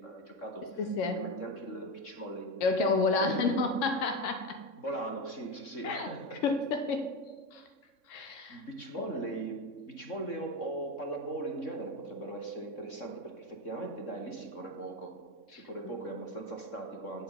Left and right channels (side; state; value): right; late; 3.6 ms